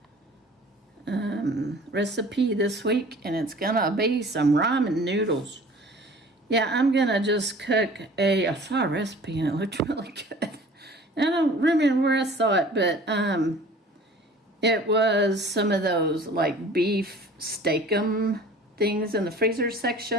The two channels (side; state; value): both; normal; correlation 0.46